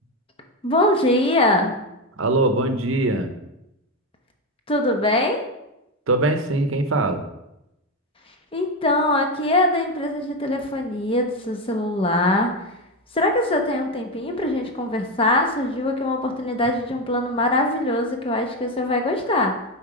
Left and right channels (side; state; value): both; normal; correlation 0.12